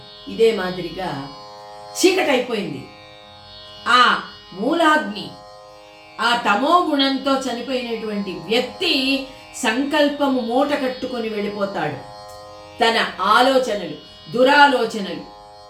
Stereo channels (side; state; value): both; identical; correlation 1.00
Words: ఇదే మాదిరిగా చీకటైపోయింది, ఆ మూలాగ్ని ఆ తమో గుణంతో చనిపోయినటువంటి వ్యక్తి సంకల్పము మూట కట్టుకొని వెళ్ళిపోతాడు. తన ఆలోచనలు, దురాలోచనలు,